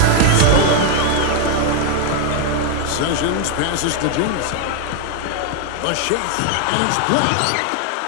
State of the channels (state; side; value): different; both; correlation 0.01